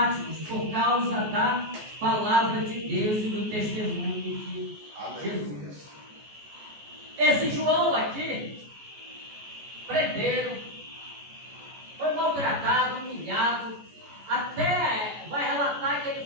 por causa da palavra de Deus e do testemunho de Jesus. Esse João aqui, prenderam, foi maltratado, humilhado, até vai relatar que ele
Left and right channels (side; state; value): left; late; 14 ms